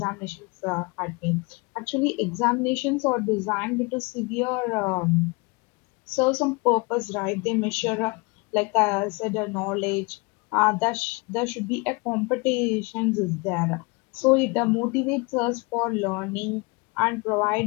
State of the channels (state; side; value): quieter; right; 28.3 dB